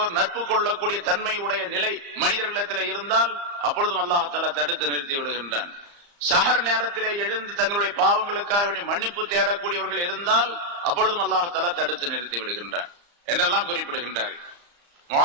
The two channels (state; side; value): late; left; 35 ms